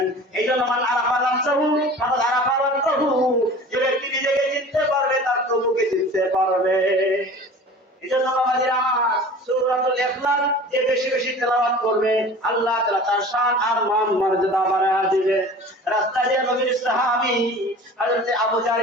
এই জন্য মান আরাফা নাফসাহু ফাকাদ আরাফা রাব্বাহু, যে ব্যক্তি নিজেকে চিনতে পারবে তার প্রভুকে চিনতে পারবে। এজন্য বাবাজিরা আমার, সূরাতুল ইখলাস যে বেশি বেশি তেলাওয়াত করবে আল্লাহ তাআলা তার শান আর মান মর্যাদা বাড়ায় দিবে। রাস্তা দিয়ে নবীর সাহাবী হযরত আবু জার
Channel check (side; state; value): both; normal; correlation 0.41